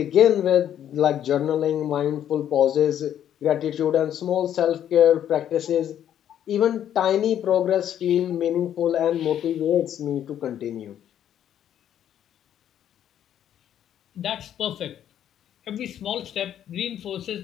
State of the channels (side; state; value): right; quieter; 10.3 dB